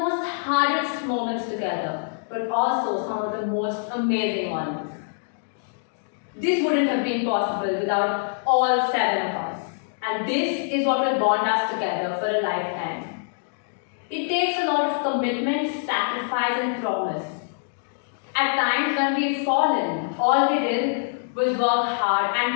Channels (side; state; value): right; silent; digital silence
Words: hardest moments together, but also some of the most amazing ones. This wouldn't have been possible without all 7 of us. And this is what will bond us together for a lifetime. It takes a lot of commitment, sacrifice, and promise. At times when we've fallen, all we did was work hard